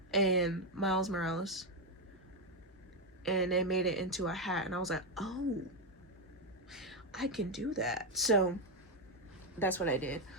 and Miles Morales. And they made it into a hat, and I was like, oh. I can do that. So that's what I did.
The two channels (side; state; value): both; normal; correlation 0.04